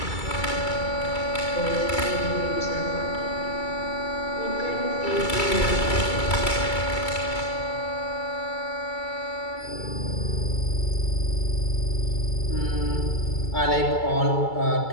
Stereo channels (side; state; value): right; late; 2.3 ms